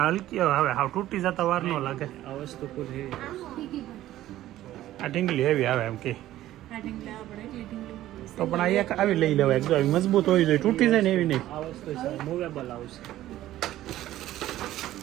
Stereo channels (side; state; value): left; quieter; 14.2 dB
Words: હલકી હવે હાવ તૂટી જતા વાર ન લાગે આ વસ્તુ આ ઢીંગલી હેવી આવે એમ કે તો પણ આ એક આવી લઈ લેવાય જો આવી મજબૂત હોવી જોઈએ તૂટી જાય ને એવી નહીં આ વસ્તુ છે મૂવેબલ આવશે